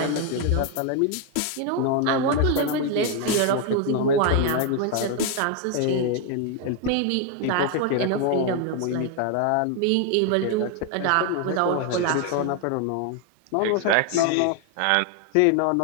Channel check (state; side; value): different; both; correlation 0.01